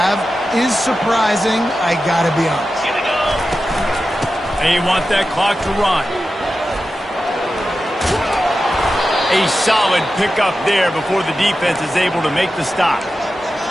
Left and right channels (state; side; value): normal; both; correlation 0.92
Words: have is surprising, I gotta be honest. And you want that clock to run. A solid pickup there before the defense is able to make the stop.